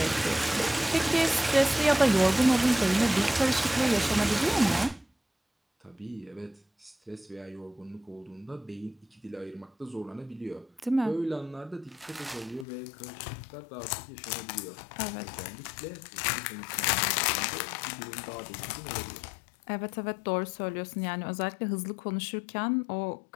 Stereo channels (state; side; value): drops out; right; at 12.7 s